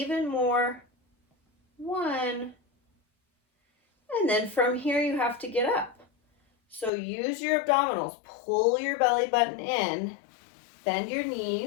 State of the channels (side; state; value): right; drops out; at 6.9 s